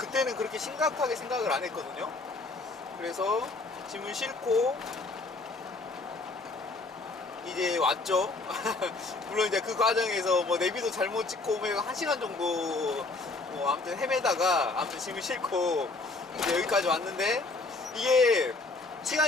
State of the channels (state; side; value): quieter; right; 3.5 dB